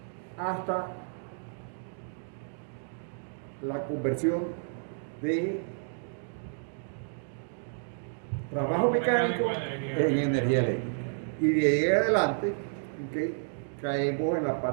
hasta la conversión de trabajo mecánico en energía eléctrica. Y de ahí en adelante, ¿okay? Caemos en la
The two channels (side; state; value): left; silent; digital silence